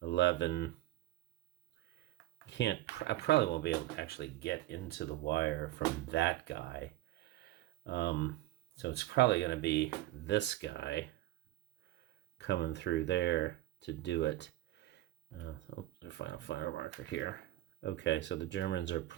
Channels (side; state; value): left; quieter; 15.7 dB